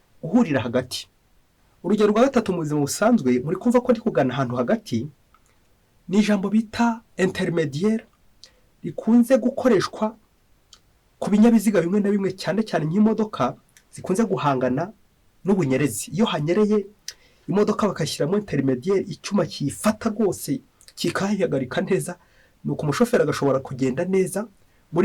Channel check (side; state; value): both; identical; correlation 1.00